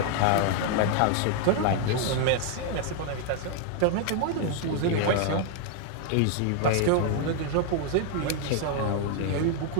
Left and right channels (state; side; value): different; both; correlation 0.00